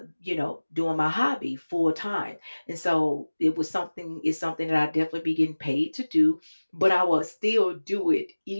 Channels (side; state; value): both; inverted; correlation -1.00